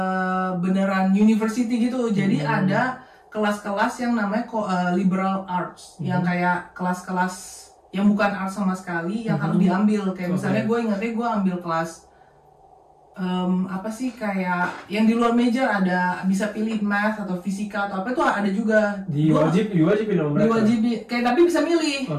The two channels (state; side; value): identical; both; correlation 1.00